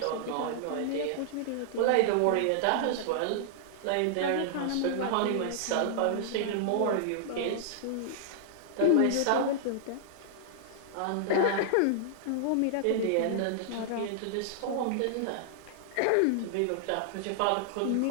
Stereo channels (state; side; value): different; both; correlation -0.01